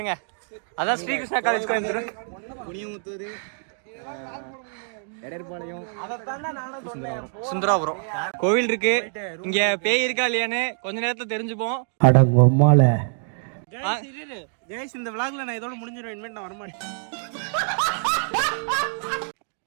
அதான் ஸ்ரீகிருஷ்ணா காலேஜ் கோயம்புத்தூர். குனியமுத்தூர், எடர்பாளையம், சுந்தராபுரம் கோவில் இருக்கு. இங்க பேய் இருக்கா இல்லையான்னு கொஞ்ச நேரத்துல தெரிஞ்சுப்போம். ஜெயஸ், இந்த விளாக்ல நான் இதோட முடிஞ்சிருவேன். இனிமேல் நான் வரமாட்டேன்.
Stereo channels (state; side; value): silent; left; digital silence